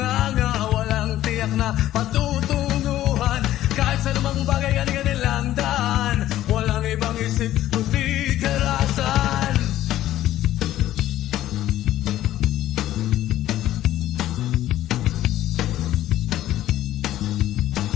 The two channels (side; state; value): right; quieter; 13.6 dB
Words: walang tiyak na patutunguhan. Kahit sa lumang bagay kanilang daan, walang ibang isip kundi karasan.